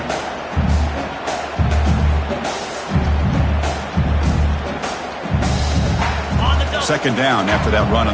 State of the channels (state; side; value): identical; both; correlation 1.00